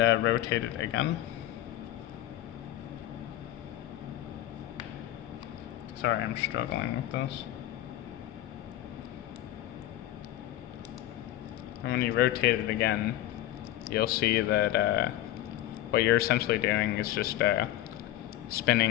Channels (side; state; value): right; quieter; 13.9 dB